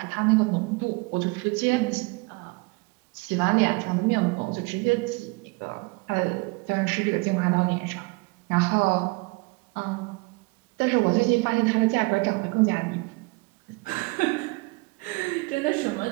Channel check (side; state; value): left; quieter; 27.5 dB